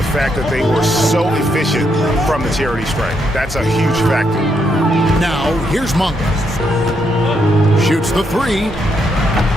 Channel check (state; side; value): normal; both; correlation 0.78